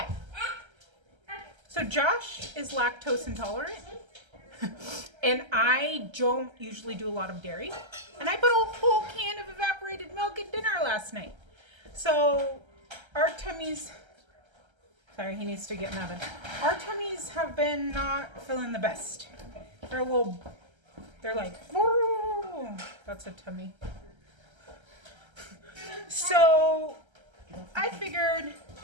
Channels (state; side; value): late; left; 1.3 ms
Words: So Josh is lactose intolerant, and I don't usually do a lot of dairy. And I put a whole can of evaporated milk at dinner last night. So our tummies, sorry, he needs to get in the oven. Our tummies have been not feeling the best. They're like, whoa, that's a tummy. So I figured